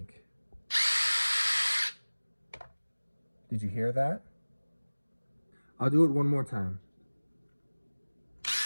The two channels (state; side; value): inverted; both; correlation -1.00